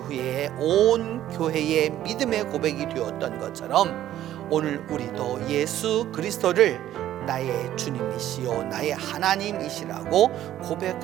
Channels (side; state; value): left; quieter; 12.5 dB